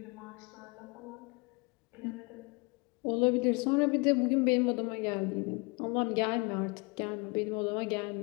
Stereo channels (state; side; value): quieter; right; 29.6 dB